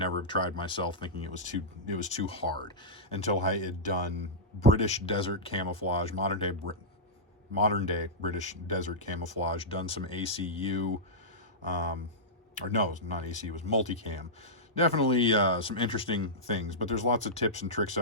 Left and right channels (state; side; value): normal; both; correlation -0.12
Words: have tried myself, thinking it was too hard, until I had done British desert camouflage, modern day British desert camouflage, done some ACU, or no, not ACU, it was multicam. Definitely some interesting things, but there's lots of tips and tricks